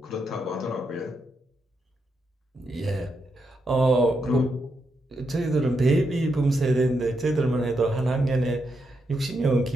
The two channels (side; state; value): both; normal; correlation 0.82